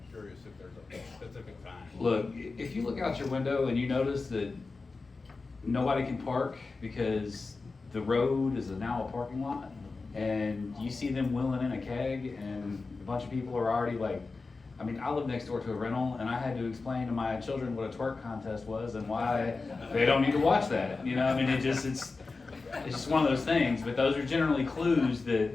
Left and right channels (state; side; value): quieter; right; 4.0 dB